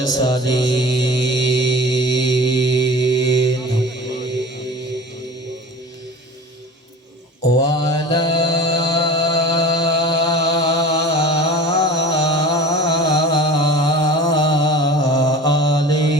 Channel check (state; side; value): normal; both; correlation 0.38